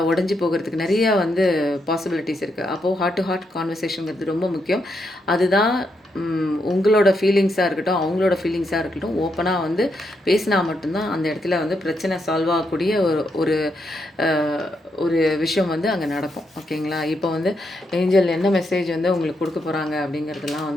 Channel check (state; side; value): normal; both; correlation 0.80